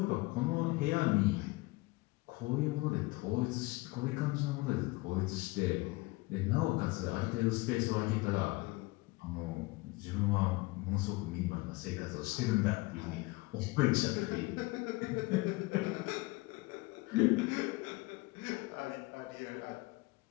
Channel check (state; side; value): quieter; right; 22.7 dB